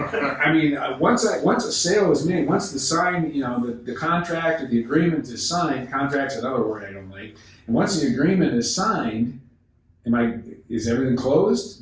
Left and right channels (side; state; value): both; identical; correlation 1.00